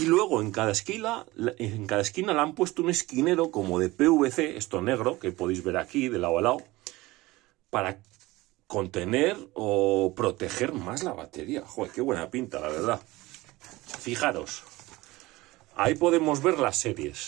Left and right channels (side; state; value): left; quieter; 19.9 dB